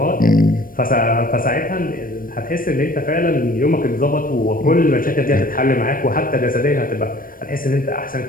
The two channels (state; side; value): late; right; 0.41 ms